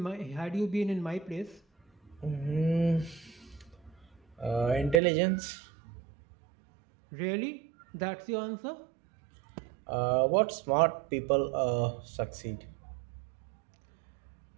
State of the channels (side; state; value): left; drops out; at 5.0 s